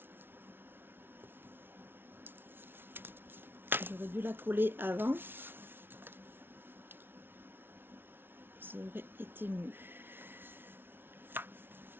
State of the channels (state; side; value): late; left; 0.11 ms